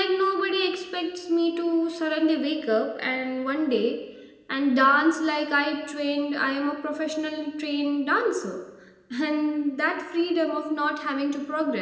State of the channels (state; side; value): identical; both; correlation 1.00